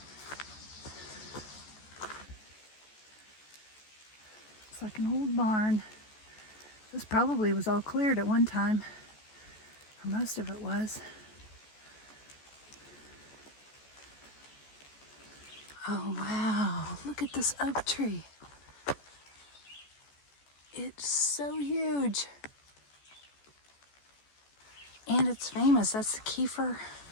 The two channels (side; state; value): right; late; 14 ms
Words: It's like an old barn. This probably was all cleared at one time, or most of it was. Oh wow, look at this oak tree. It's so huge. And it's famous, that's the Keffer